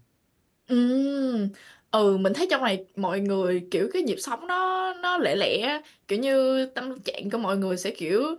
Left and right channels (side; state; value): both; identical; correlation 1.00